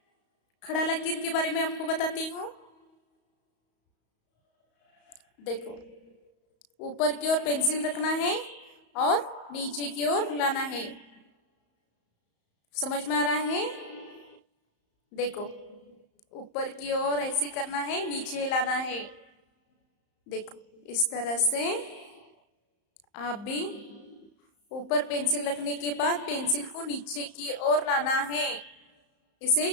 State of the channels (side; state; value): right; late; 34 ms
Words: खड़ा लकीर के बारे में आपको बताती हूं। देखो ऊपर की ओर पेंसिल रखना है और नीचे की ओर लाना है, समझ में आ रहा है। देखो ऊपर की ओर ऐसे करना है, नीचे लाना है। देखो इस तरह से आप भी ऊपर पेंसिल रखने के बाद पेंसिल को नीचे की ओर लाना है, इसे